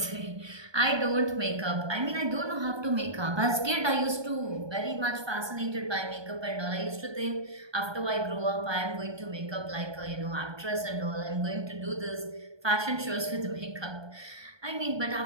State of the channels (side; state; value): left; late; 1.2 ms